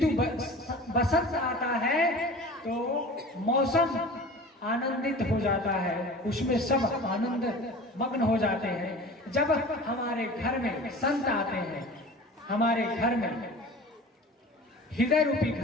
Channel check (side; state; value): both; normal; correlation 0.39